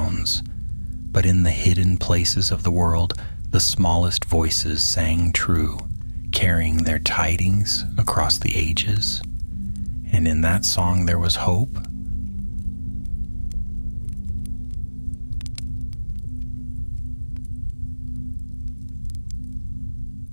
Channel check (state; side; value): inverted; both; correlation -1.00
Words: But in the hidden places of the world, the smallest voices sang true, carrying their tidings across the ages. And in that song there was hope